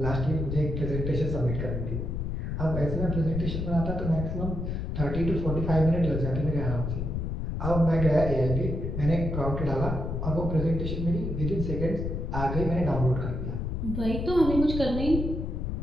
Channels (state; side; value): noise; left; rumble, 3 dB below the sound